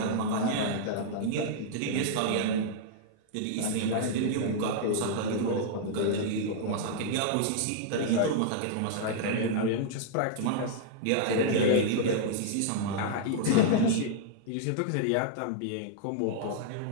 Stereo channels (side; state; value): both; different; correlation -0.01